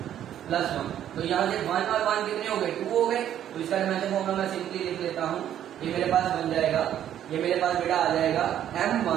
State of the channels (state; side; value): quieter; left; 10.7 dB